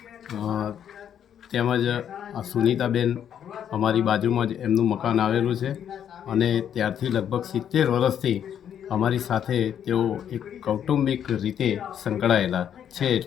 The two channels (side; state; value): right; quieter; 9.2 dB